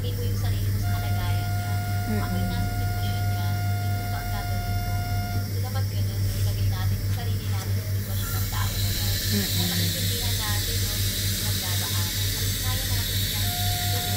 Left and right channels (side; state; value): both; identical; correlation 1.00